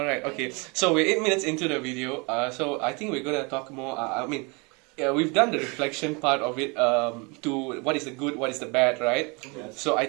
okay. So we're 8 minutes into the video. So I think we're gonna talk more. We've done the reflection part of it to what is the good, what is the bad, right? Yes. So I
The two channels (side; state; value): left; quieter; 29.6 dB